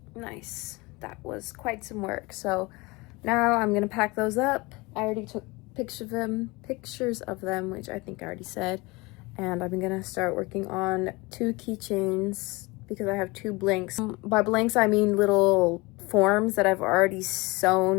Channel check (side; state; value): right; quieter; 24.3 dB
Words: Nice. That was quite some work. So now I'm gonna pack those up. I already took pictures of them, which I think I already said. And I'm gonna start working on 2 keychains because I have 2 blanks. By blanks, I mean little forms that I've already